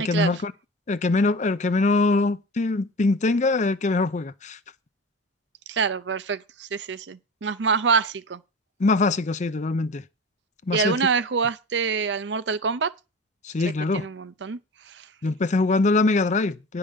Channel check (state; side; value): normal; both; correlation 0.33